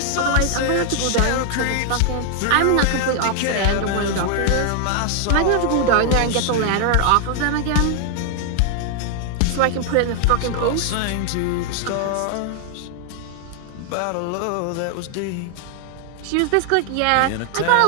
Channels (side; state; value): both; different; correlation 0.00